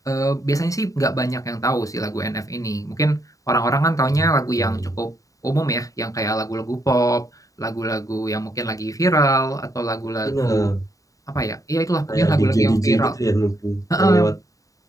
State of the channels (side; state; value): right; late; 0.16 ms